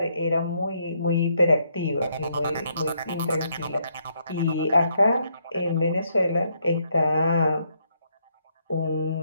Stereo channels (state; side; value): inverted; both; correlation -0.73